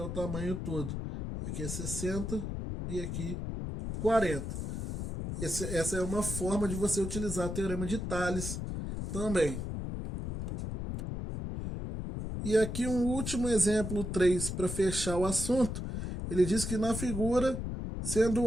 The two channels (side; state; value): left; noise; rumble, 4 dB below the sound